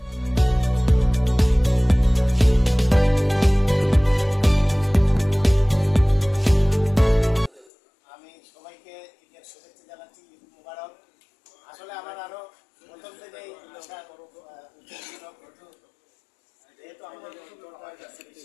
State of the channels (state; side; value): drops out; right; at 7.7 s